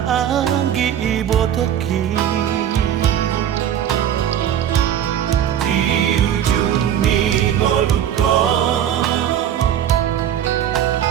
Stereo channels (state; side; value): quieter; left; 10.1 dB